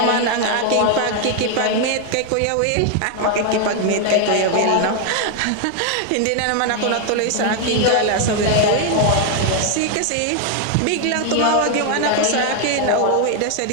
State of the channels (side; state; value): both; different; correlation 0.00